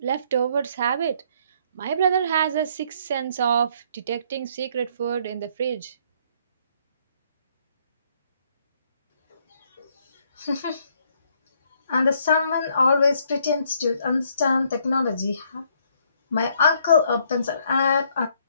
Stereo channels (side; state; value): both; inverted; correlation -0.66